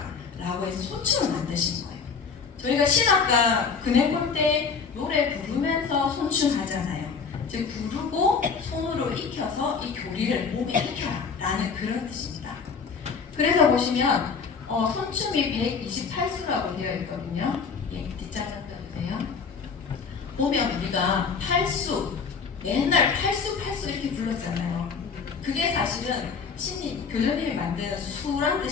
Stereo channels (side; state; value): right; quieter; 5.6 dB